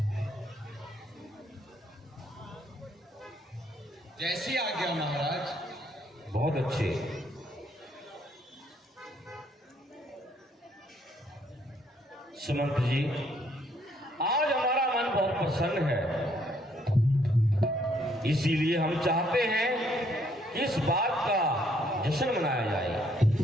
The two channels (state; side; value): normal; both; correlation 0.68